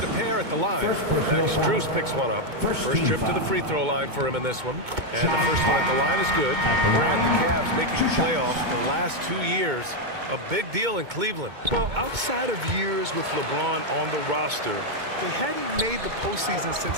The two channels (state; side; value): late; left; 2.2 ms